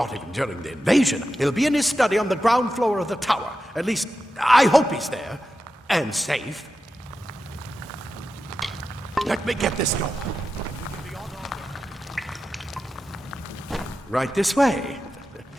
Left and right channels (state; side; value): normal; both; correlation 0.91